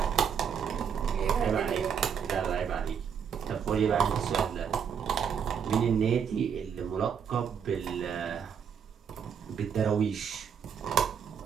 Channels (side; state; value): left; quieter; 7.4 dB